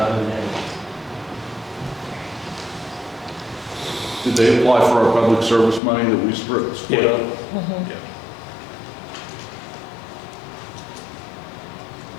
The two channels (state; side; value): drops out; right; at 5.8 s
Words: in there. Did they apply for our public service money that we split up? Mm-hmm.